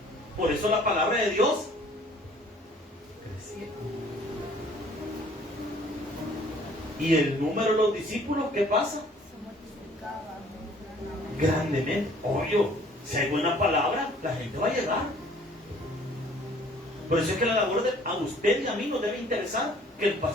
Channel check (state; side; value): normal; both; correlation 0.56